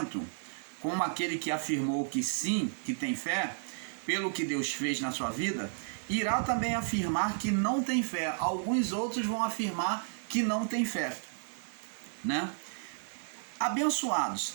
como aquele que afirmou que sim, que tem fé, pelo que Deus fez na sua vida, irá também afirmar que não tem fé. Alguns outros vão afirmar que não tem fé, né? Abençoados,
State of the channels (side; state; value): left; silent; 56 dB below the other